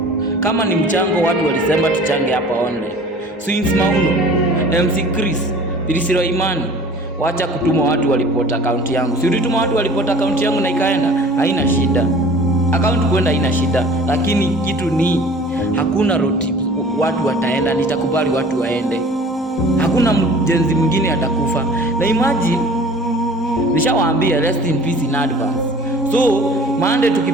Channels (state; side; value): normal; both; correlation 0.46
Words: Kama ni mchango watu walisema tuchange hapa online. Swings Mauno, MC Chris, Pilisiro Imani, wacha kutuma watu walipota account yangu. Si ulituma watu walipota account yangu na ikaenda, haina shida. Account kwenda haina shida, lakini kitu ni hakuna road trip watu wataenda, nitakubali watu waende. Hakuna mjenzi mwingine atakufa. Na imagine nishawaambia rest in peace in advance. So Monday